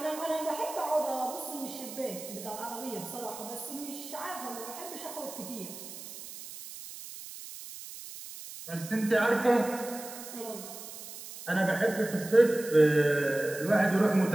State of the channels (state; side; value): noise; right; hiss, 12 dB below the sound